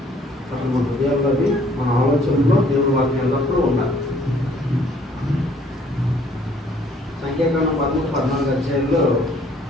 అసలు మన హృదయాల్లో అది మన ఆలోచనలో దేవుడి వాక్యం ఎల్లప్పుడూ ఉండాలి. సంఖ్యాకాండం 13-14 అధ్యాయంలో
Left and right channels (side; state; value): both; normal; correlation 0.61